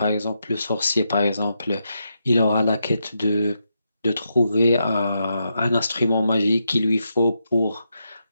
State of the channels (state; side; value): inverted; both; correlation -0.83